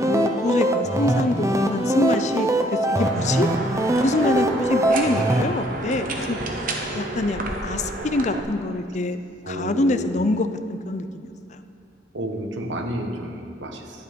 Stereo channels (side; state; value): both; normal; correlation 0.63